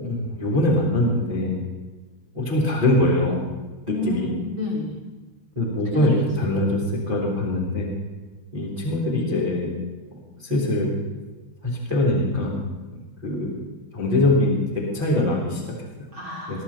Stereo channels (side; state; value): left; late; 5.9 ms